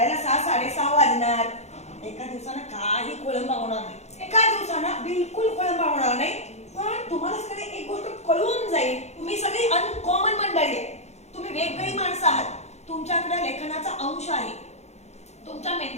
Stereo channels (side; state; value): right; late; 0.32 ms